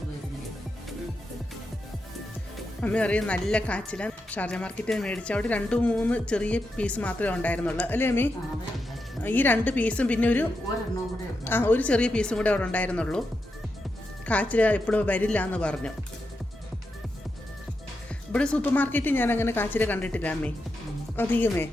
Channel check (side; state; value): both; normal; correlation 0.86